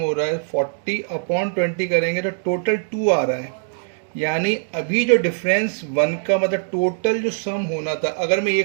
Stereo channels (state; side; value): silent; left; digital silence